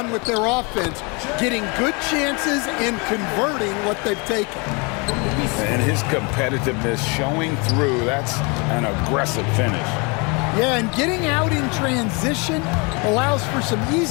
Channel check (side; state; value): right; quieter; 30.5 dB